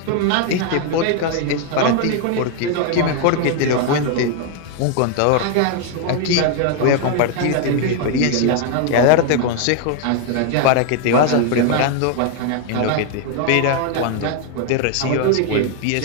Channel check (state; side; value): different; both; correlation 0.00